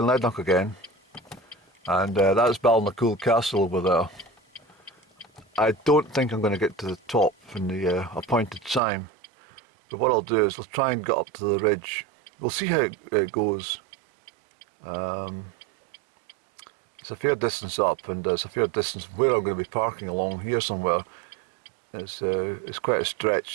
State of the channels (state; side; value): drops out; left; at 8.8 s